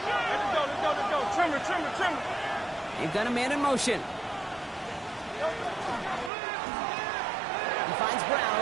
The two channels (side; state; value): left; drops out; at 6.3 s